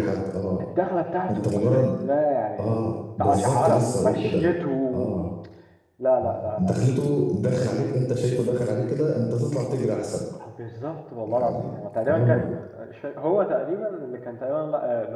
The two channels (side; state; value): both; identical; correlation 1.00